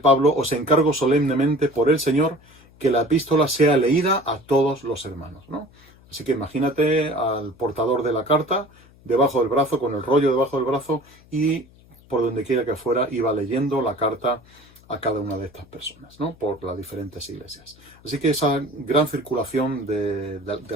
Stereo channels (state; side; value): noise; left; hum, 27 dB below the sound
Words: os encargo solemnemente por el Señor que la epístola sea leída a todos los hermanos, ¿no? Así que imagínate al portador de la carta debajo del brazo, con el rollo debajo del brazo, y por donde quiera que fuera iba leyendo la carta a cada una de estas personas, ¿no? Por las diferentes iglesias. Así que esa gran circulación de